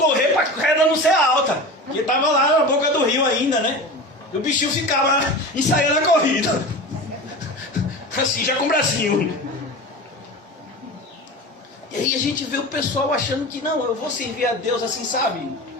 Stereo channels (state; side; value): normal; both; correlation 0.31